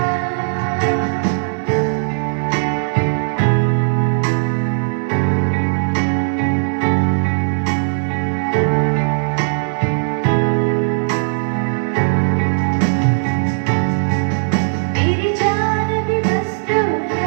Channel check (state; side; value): silent; left; 56 dB below the other